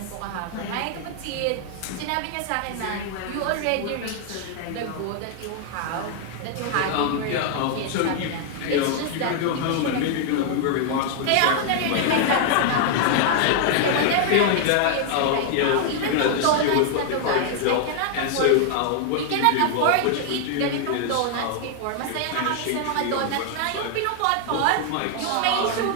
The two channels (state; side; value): different; both; correlation 0.00